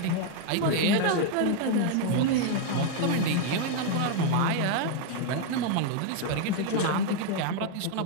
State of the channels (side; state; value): both; different; correlation 0.00